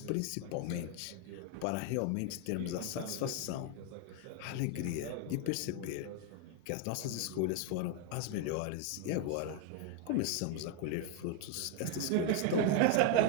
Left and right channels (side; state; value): both; different; correlation 0.01